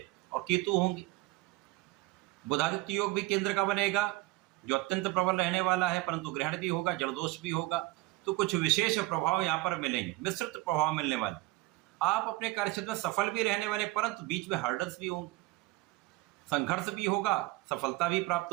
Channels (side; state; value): left; quieter; 20.1 dB